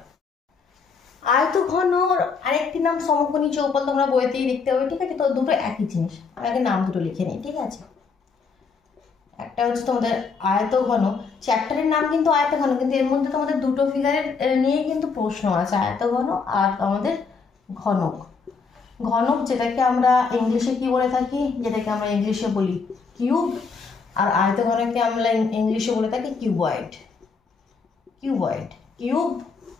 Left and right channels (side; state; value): right; quieter; 5.1 dB